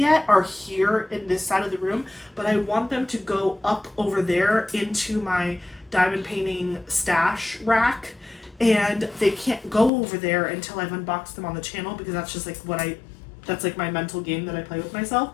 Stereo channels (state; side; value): drops out; right; at 9.9 s